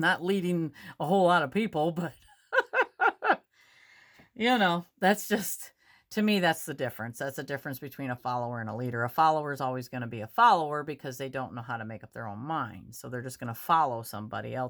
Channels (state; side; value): identical; both; correlation 1.00